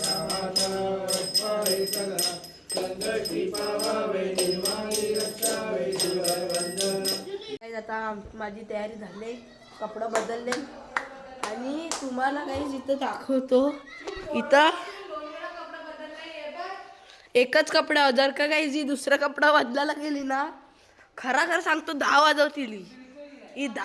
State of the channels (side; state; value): both; identical; correlation 1.00